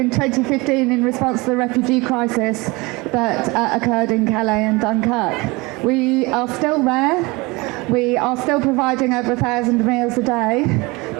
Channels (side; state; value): left; quieter; 24.3 dB